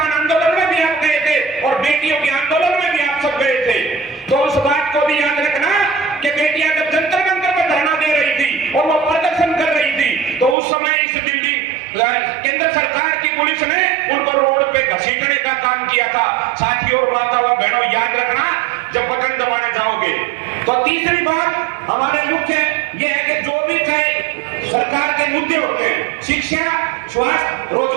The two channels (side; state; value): left; drops out; at 10.6 s